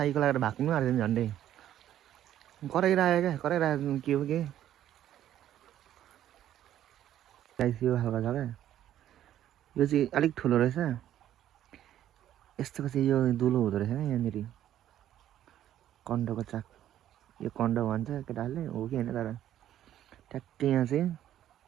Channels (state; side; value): quieter; left; 11.7 dB